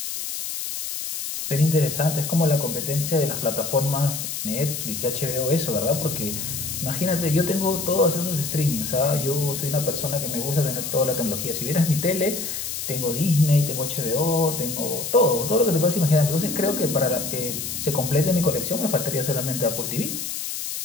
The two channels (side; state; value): left; noise; hiss, 5 dB below the sound